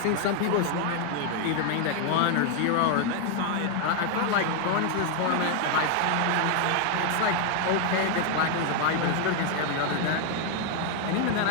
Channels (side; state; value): both; different; correlation 0.00